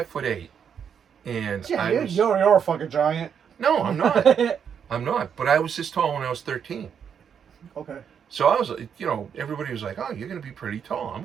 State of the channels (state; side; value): quieter; left; 7.6 dB